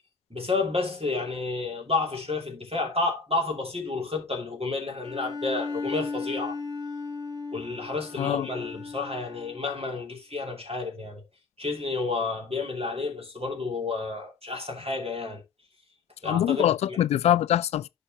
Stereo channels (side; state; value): right; quieter; 5.3 dB